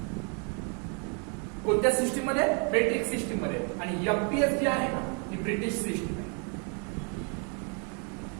कोणत्या सिस्टीम मध्ये? मेट्रिक सिस्टीम मध्ये. आणि एमपीएस जी आहे ना ही ब्रिटिश सिस्टीम आहे.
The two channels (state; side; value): quieter; left; 38.9 dB